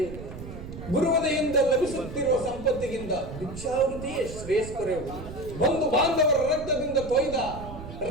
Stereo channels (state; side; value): noise; right; rumble, 11 dB below the sound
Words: ಗುರುವದೆಯಿಂದ ಲಭಿಸುತ್ತಿರುವ ಸಂಪತ್ತಿಗಿಂತ ಭಿಕ್ಷಾವೃತಿಯೇ ಶ್ರೇಷ್ಠರೆವು. ಬಂಧು ಬಾಂಧವರ ರಕ್ತದಿಂದ ಕೊಯ್ದ